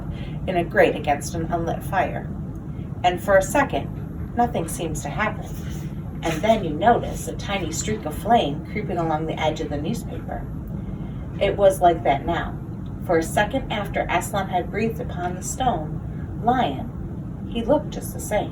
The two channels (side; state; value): both; identical; correlation 1.00